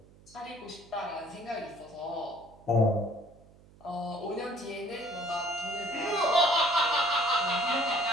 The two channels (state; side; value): noise; right; hum, 25 dB below the sound